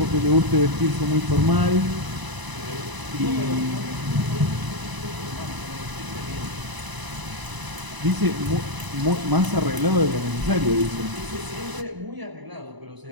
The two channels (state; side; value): late; left; 1.0 ms